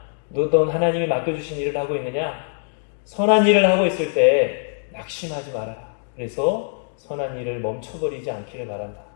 너는 하나님이 맡겨주신 일을 하고 있느냐? 선한 일을 하고 있을 때 낙심하지 말아라. 그래서 선한 일을 멈춰버리지 않기를 바란다.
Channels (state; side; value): silent; right; digital silence